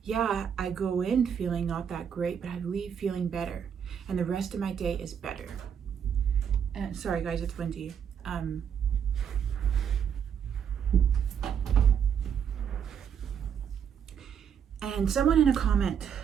yeah, I go in feeling not that great, but I leave feeling better. And the rest of my day is better. And sorry guys, it's windy. And someone in a comment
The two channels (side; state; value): left; quieter; 7.9 dB